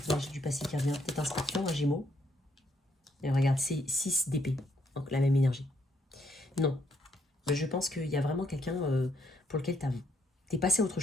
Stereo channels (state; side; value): normal; both; correlation 0.73